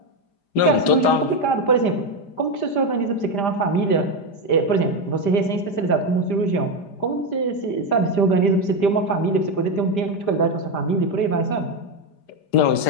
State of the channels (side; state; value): right; late; 5.0 ms